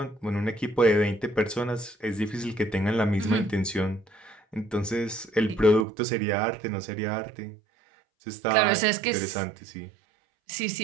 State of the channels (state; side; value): drops out; left; at 5.9 s